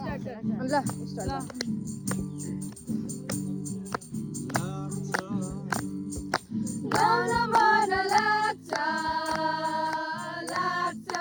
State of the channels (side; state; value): both; identical; correlation 1.00